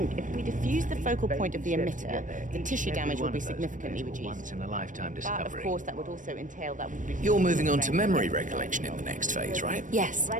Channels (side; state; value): left; late; 0.37 ms